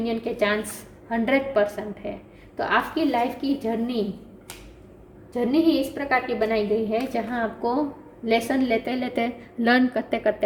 के चांस 100% है। तो आपकी लाइफ की जर्नी ही इस प्रकार की बनाई गई है जहां आपको लेसन लेते लेते, लर्न करते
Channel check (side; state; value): both; identical; correlation 1.00